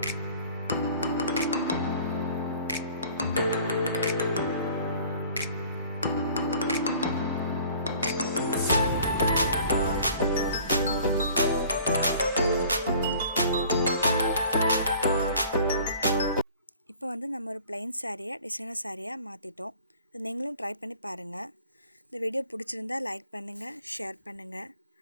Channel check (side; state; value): both; inverted; correlation -0.49